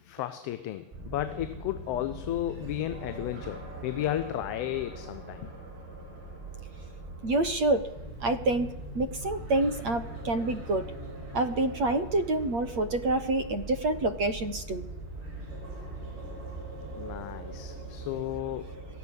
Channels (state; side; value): late; left; 8.6 ms